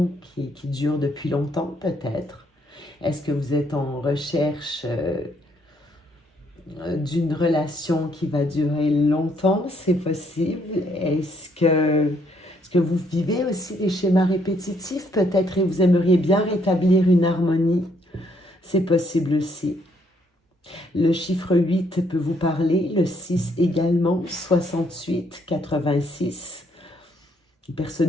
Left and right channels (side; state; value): both; normal; correlation 0.70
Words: qui dure depuis longtemps, peut-être? Est-ce que vous êtes en recherche d'une relation qui va durer longtemps? C'est possible. Est-ce que vous vivez aussi des schémas répétitifs, peut-être, et vous aimeriez bien rétablir une harmonie? C'est possible aussi. Le chiffre 8 peut vous parler, le 6 également, 68, 86. Une